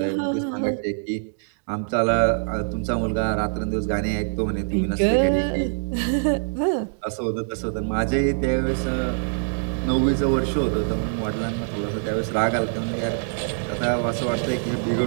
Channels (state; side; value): silent; left; digital silence